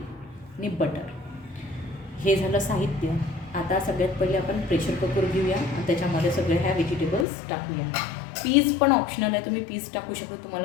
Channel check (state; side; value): drops out; right; at 7.2 s